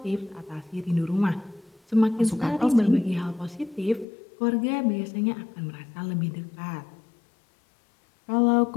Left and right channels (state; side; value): drops out; right; at 4.0 s